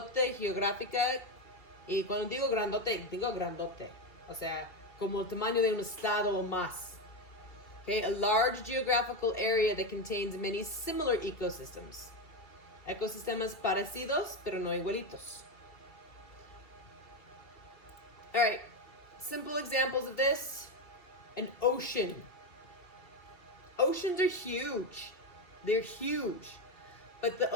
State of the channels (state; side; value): late; right; 2.7 ms